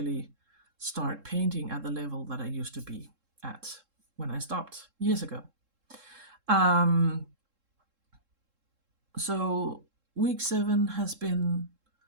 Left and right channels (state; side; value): late; left; 3.7 ms